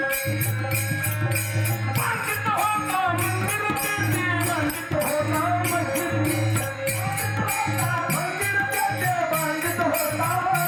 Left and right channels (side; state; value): both; identical; correlation 1.00